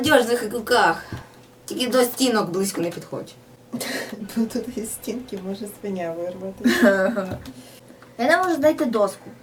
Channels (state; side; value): identical; both; correlation 1.00